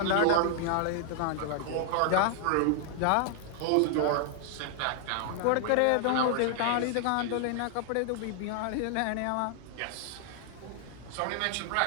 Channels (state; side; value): different; both; correlation 0.00